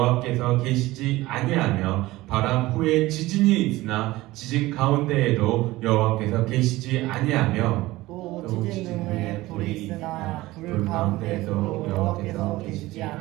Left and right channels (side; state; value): left; quieter; 18.5 dB